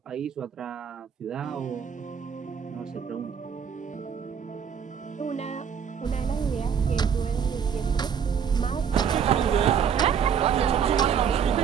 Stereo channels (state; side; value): quieter; left; 7.4 dB